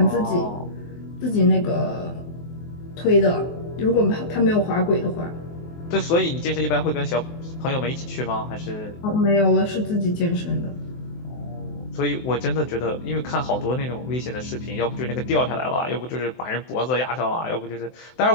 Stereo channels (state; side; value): late; right; 24 ms